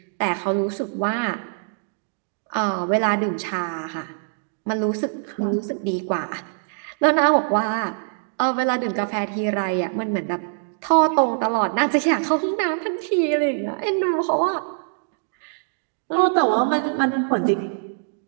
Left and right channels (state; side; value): silent; left; digital silence